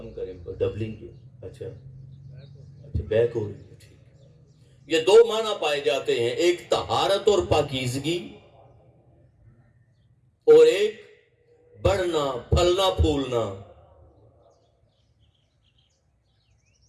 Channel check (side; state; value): both; identical; correlation 1.00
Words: کریں، ڈبلنگ کی، اچھا بیک ہو رہی ہے، ٹھیک۔ یہ دو معنی پائے جاتے ہیں، ایک طہارت اور پاکیزگی، اور ایک بڑھنا، پھلنا پھولنا۔